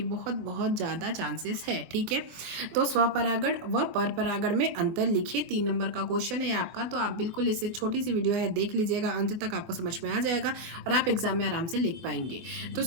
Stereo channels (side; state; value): left; late; 24 ms